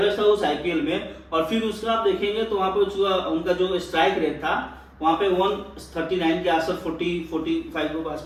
था उस आईपीएल में। और फिर उसका आप देखेंगे तो वहाँ पे उनका जो स्ट्राइक रेट था वहाँ पे 139 के आसपास 40-45 के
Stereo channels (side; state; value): both; identical; correlation 1.00